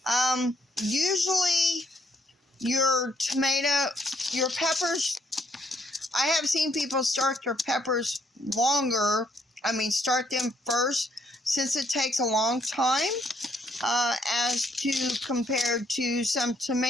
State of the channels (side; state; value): both; normal; correlation 0.71